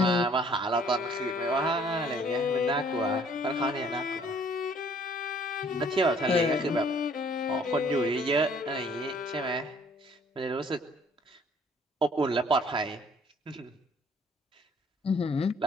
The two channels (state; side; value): normal; both; correlation 0.59